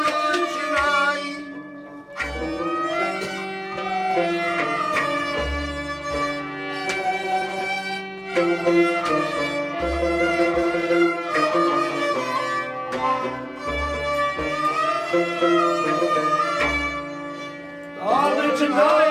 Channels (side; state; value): both; identical; correlation 1.00